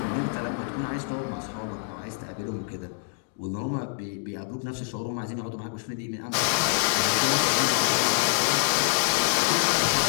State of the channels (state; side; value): silent; right; digital silence